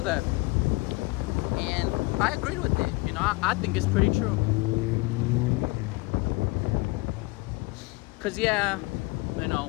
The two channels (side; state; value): right; quieter; 23.8 dB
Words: that and I agreed with it. I think it's pretty true. Cause